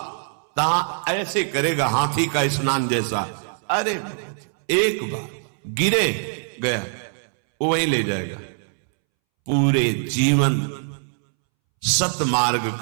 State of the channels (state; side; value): silent; left; 64 dB below the other